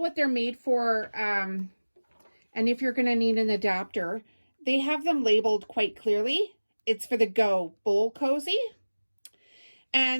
they're made for, and if you're going to need an adapter. They have them labeled quite clearly. It's for the Go Bowl Cozy.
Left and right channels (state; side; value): inverted; both; correlation -1.00